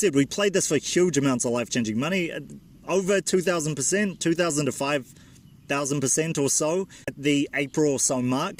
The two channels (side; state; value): both; identical; correlation 1.00